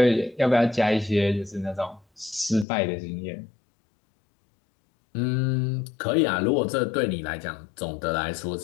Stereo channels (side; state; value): right; drops out; at 2.7 s